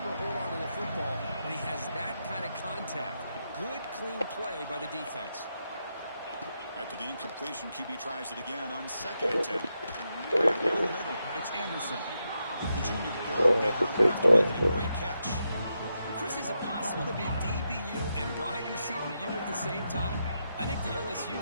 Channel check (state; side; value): inverted; both; correlation -0.84